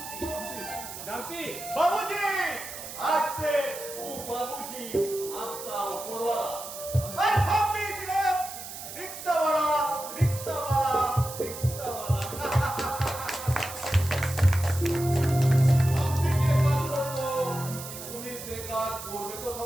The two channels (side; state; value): right; noise; hiss, 11 dB below the sound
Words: बाबूजी, आज से तू बाबूजी आपका ऊपरवाला और हम भी सिर्फ रिक्शा वाला रिक्शा वाला रिक्शा वाला। আপনি যে কাজ করবো উনি সে কাজ করবে তো